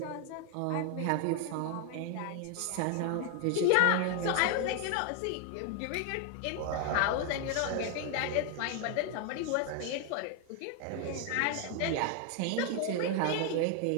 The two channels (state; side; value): different; both; correlation 0.01